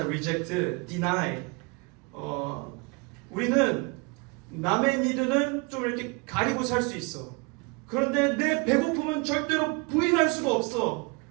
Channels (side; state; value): left; quieter; 29.6 dB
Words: reject, deny. 우리는 남의 니드는 좀 이렇게 가리고 살 수 있어. 그런데 내 배고픔은 절대로 부인할 수가 없어.